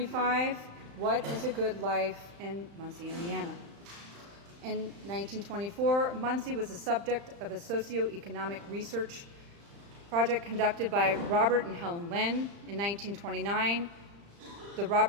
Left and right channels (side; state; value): left; late; 35 ms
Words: what is a good life in Muncie, Indiana? In 1924, Muncie was the subject of a socioeconomic research project conducted by Robert and Helen Lynn. In 1929,